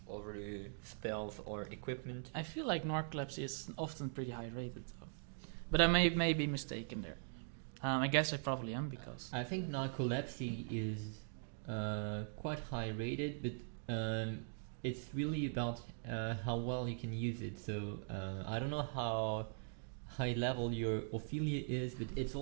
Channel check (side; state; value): left; silent; digital silence